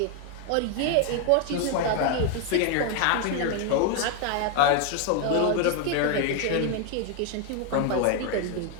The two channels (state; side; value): different; both; correlation 0.01